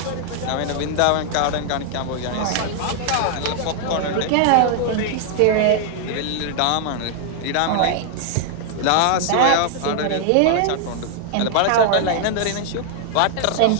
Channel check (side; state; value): both; different; correlation 0.00